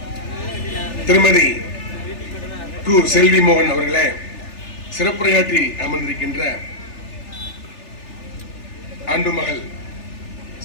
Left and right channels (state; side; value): late; right; 3.4 ms